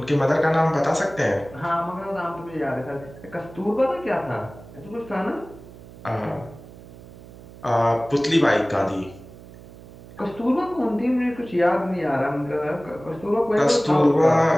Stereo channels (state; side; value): noise; right; hum, 19 dB below the sound